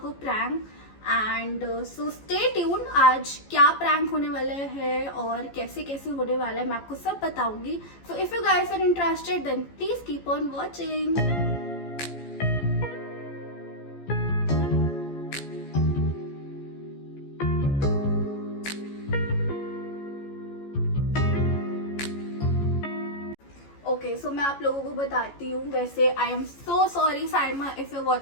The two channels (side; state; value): right; late; 14 ms